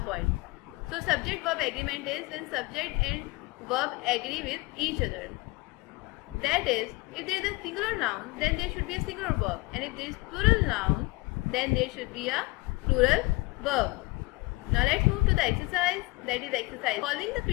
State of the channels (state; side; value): quieter; right; 23.6 dB